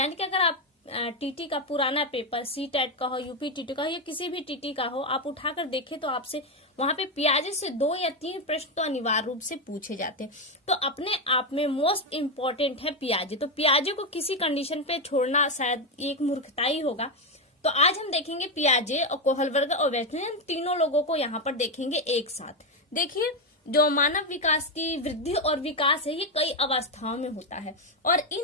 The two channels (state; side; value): normal; both; correlation 0.07